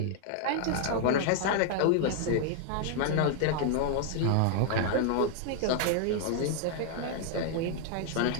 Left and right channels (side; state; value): both; different; correlation 0.00